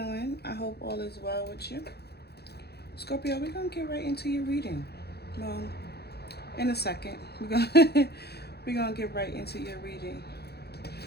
I hope all is well with you. Scorpio, we're gonna get right into your reading. Well, in a second. We're gonna get right into your reading.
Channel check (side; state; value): right; late; 0.47 ms